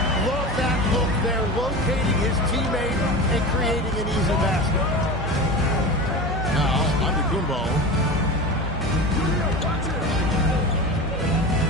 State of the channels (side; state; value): both; normal; correlation 0.28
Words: Love that look there, locating his teammate and creating an easy basket. Now, Antetokounmpo.